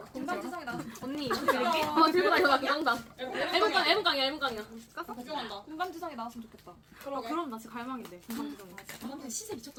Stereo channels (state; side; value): identical; both; correlation 1.00